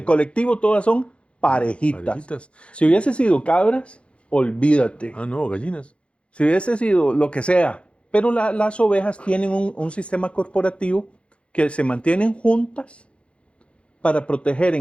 colectivo todas son parejitas. Parejitas. Si hubiese sido cabras, olvídate. Ah, no, gallinas. Si hubiese sido lo que sea. Pero las ovejas tienen un sistema corporativo que se mantienen juntas para proteger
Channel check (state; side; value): late; right; 0.059 ms